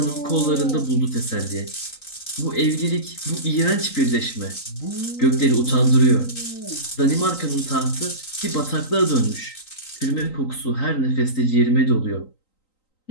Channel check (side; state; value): right; late; 3.9 ms